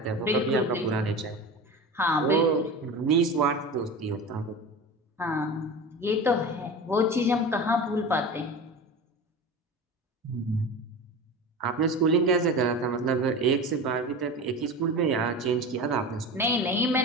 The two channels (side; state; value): both; normal; correlation 0.30